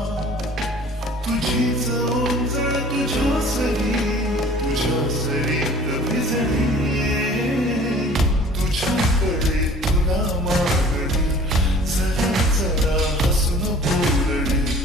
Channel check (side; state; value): both; normal; correlation 0.48